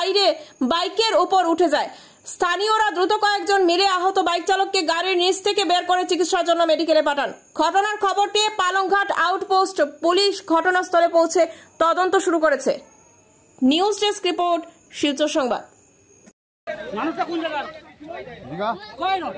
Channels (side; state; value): both; identical; correlation 1.00